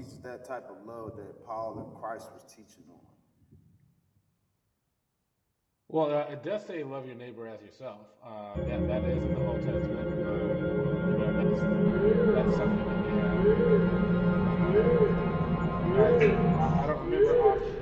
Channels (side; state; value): both; identical; correlation 1.00